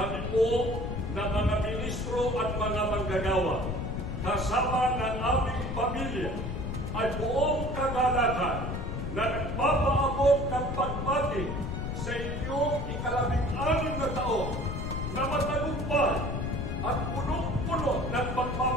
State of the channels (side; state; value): left; noise; rumble, 4 dB below the sound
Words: po na mga ministro at mga manggagawa, kasama ng aming pamilya, ay buong kagalakan na nagpapaabot ng pagbati sa inyong ika-16 na taon na matagumpay at punong-puno ng